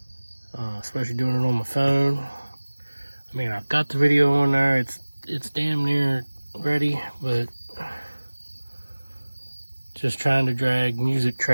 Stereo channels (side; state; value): both; inverted; correlation -1.00